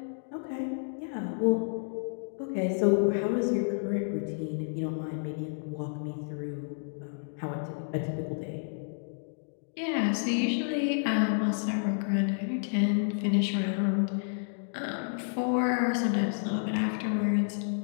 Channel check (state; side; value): silent; right; digital silence